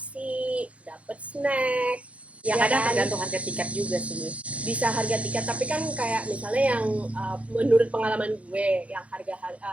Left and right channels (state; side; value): late; left; 0.064 ms